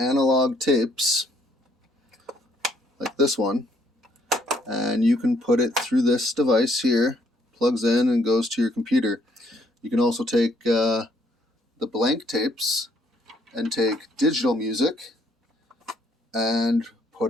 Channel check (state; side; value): normal; both; correlation 0.67